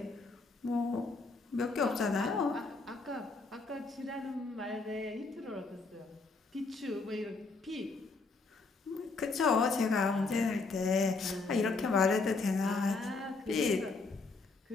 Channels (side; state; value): right; quieter; 3.9 dB